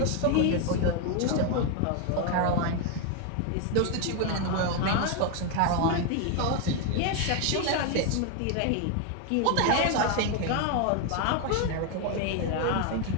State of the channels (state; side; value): different; both; correlation 0.01